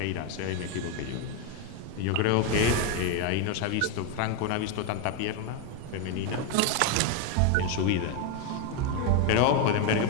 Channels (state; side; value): different; both; correlation 0.02